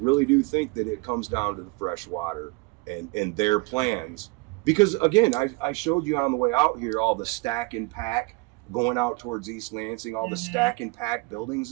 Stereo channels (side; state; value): left; quieter; 26.9 dB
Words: do think that it comes down to the fresh water and their plans. Because again, I showed you on the way out here all the stack and pack going out towards East Lansing, all the stack and pack buildings